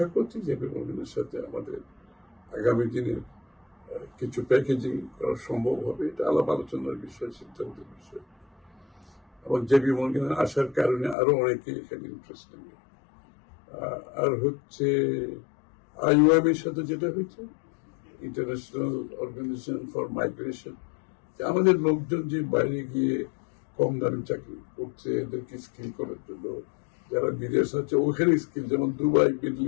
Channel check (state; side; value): drops out; right; at 11.2 s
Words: করছি জেপি মর্গেনের সাথে আমাদের আগামী দিনের কিছু প্যাকেজিং করা সম্ভব হবে। এটা আলাপ আলোচনার বিষয়, সিদ্ধান্তের বিষয়। এবং জেপি মর্গেনের আসার কারণে আরো অনেকে এখানে ইন্টারেস্ট নেবে। আর হচ্ছে আইওএম এর সাথে যেটা হয়েছে, ইন্টারন্যাশনাল অর্গানাইজেশন ফর মাইগ্রেশন, আমাদের লোকজন যে বাইরে গিয়ে কম দামে চাকরি করছে এদেরকে স্কিল করার জন্য, যারা বিদেশ আছে ওখানে স্কিল, যেমন দুবাই মিডল